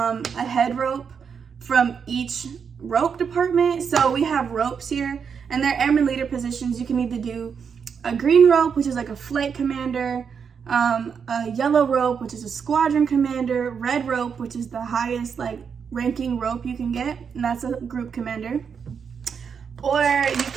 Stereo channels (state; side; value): quieter; left; 6.6 dB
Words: head rope from each rope department. So we have ropes here, and they're airman leader positions. You can either do a green rope, which is like a flight commander, a yellow rope, which is a squadron commander, red rope, which is the highest like ranking rope you can get, and that's a group commander. Or you